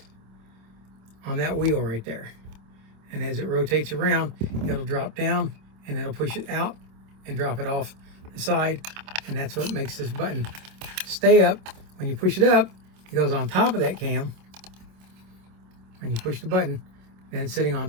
on that wheel right there. And as it rotates around, it'll drop down and it'll push it out and drop it off the side. And that's what makes this button stay up. When you push it up, it goes on top of that cam. When you push the button, then it's sitting on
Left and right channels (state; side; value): late; left; 26 ms